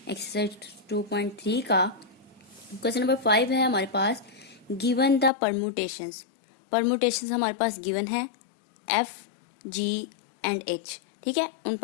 एक्सरसाइज 2.3 का। क्वेश्चन नंबर 5 है हमारे पास, गिवन द परमुटेशंस। परमुटेशंस हमारे पास गिवन है एफ, जी एंड एच। ठीक है, उन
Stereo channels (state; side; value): drops out; right; at 5.3 s